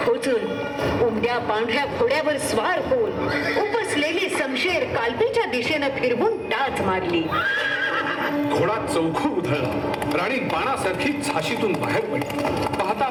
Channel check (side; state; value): both; identical; correlation 1.00